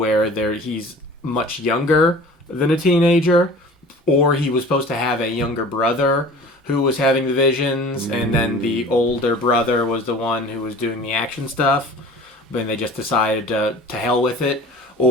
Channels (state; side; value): normal; both; correlation 0.42